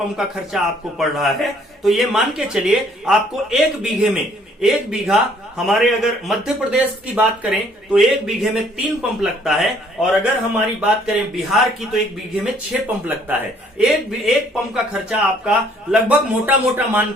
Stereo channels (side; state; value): both; normal; correlation 0.62